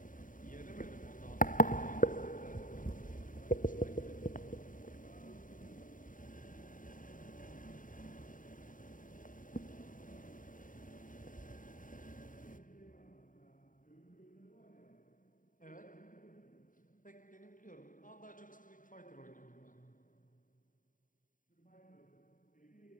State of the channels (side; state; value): right; late; 0.39 ms